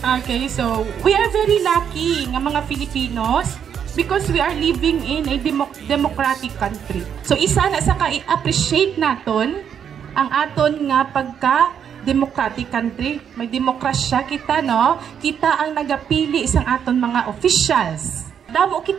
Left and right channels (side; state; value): left; quieter; 8.2 dB